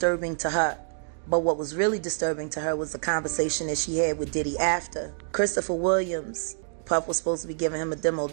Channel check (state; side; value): silent; left; digital silence